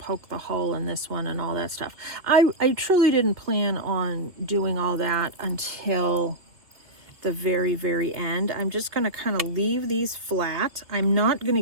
the hole in this one and all that stuff. I truly didn't plan on doing all that until the very, very end. I'm just going to kind of leave these flat. I'm not going to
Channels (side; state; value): left; late; 2.7 ms